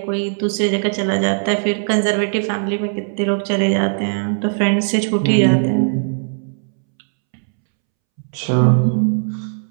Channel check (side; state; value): left; silent; 67 dB below the other